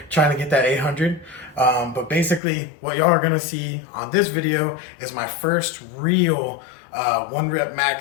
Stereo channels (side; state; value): right; drops out; at 2.4 s